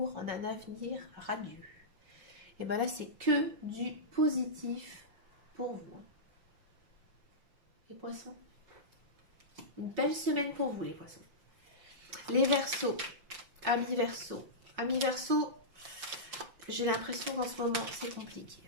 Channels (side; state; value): left; late; 5.4 ms